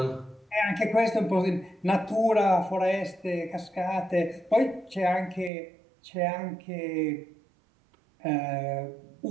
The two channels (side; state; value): left; drops out; at 5.5 s